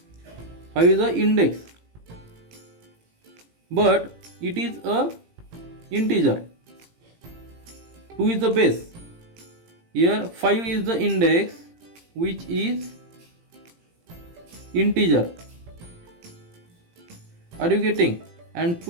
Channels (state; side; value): late; left; 18 ms